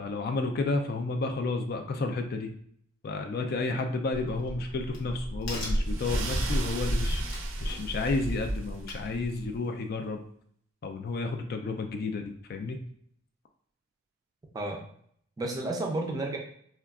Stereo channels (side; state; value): both; normal; correlation 0.62